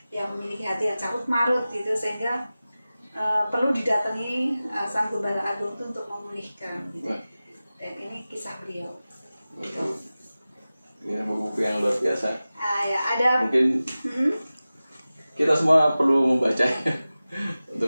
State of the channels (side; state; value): both; inverted; correlation -0.96